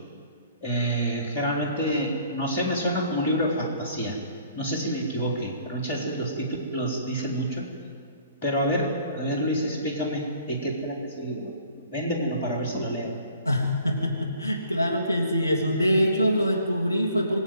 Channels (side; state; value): both; inverted; correlation -0.56